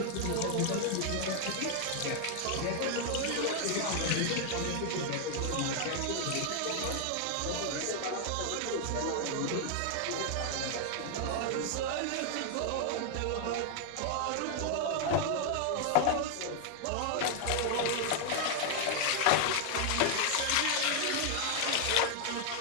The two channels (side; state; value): both; different; correlation 0.00